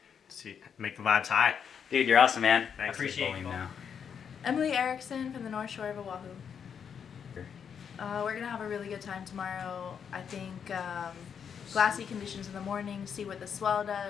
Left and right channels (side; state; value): right; quieter; 7.4 dB